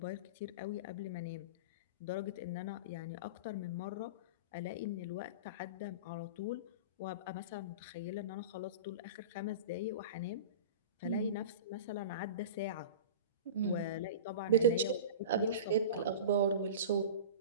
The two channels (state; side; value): inverted; both; correlation -0.32